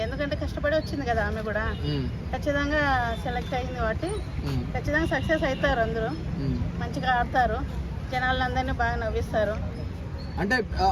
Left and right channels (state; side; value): identical; both; correlation 1.00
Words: ఎందుకంటే కష్టపడి వచ్చింది కదా ఆమె కూడా. ఖచ్చితంగా సెలెక్ట్ అయింది కాబట్టి ఖచ్చితంగా సక్సెస్ అవుతారు. అందరూ మంచిగా ఆడతారు, జనాలందరినీ బాగా నవ్విస్తారు.